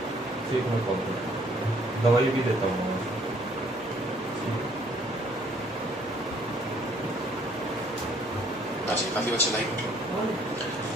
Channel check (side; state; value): both; normal; correlation 0.62